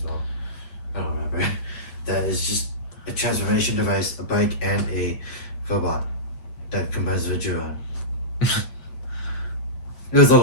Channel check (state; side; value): late; right; 8.2 ms